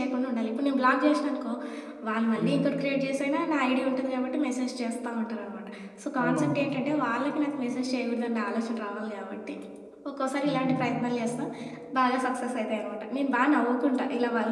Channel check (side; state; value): both; identical; correlation 1.00